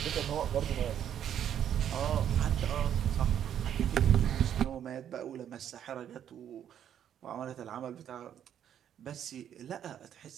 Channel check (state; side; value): quieter; left; 9.8 dB